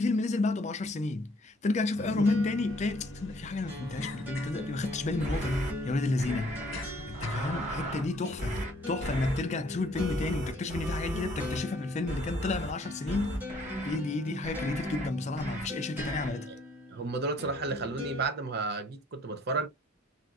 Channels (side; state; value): both; normal; correlation 0.62